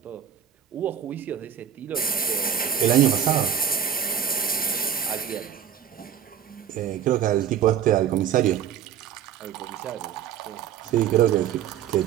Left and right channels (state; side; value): quieter; left; 9.1 dB